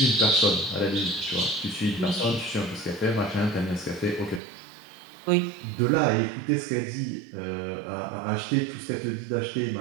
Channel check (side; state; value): left; drops out; at 4.4 s